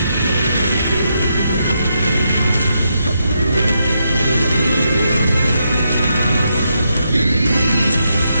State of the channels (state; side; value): inverted; both; correlation -0.81